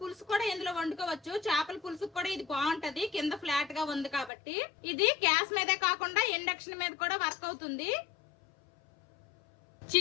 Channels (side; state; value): right; drops out; at 4.3 s